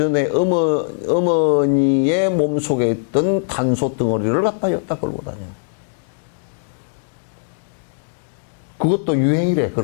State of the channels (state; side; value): silent; right; digital silence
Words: 어머니의 몸 속에 있던 탄소 덩어리를 갖다 여기다 걸고 다녀. 그것도 유행이래,